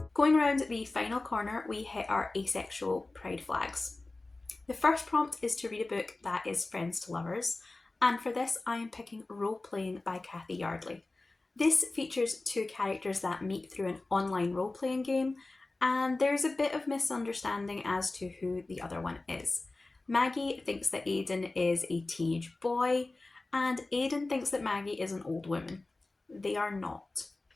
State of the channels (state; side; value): quieter; right; 3.1 dB